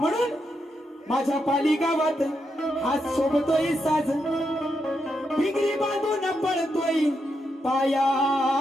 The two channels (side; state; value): both; normal; correlation 0.83